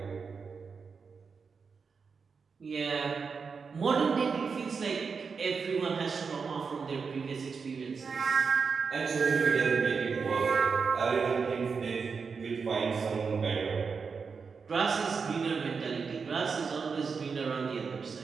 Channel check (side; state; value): left; quieter; 5.4 dB